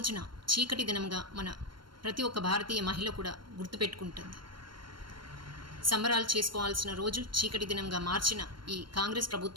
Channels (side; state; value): left; late; 0.72 ms